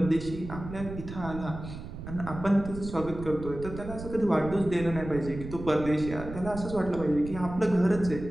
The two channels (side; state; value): right; noise; rumble, 10 dB below the sound